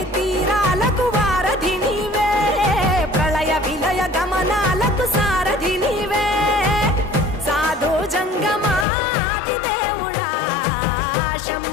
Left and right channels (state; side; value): drops out; right; at 8.8 s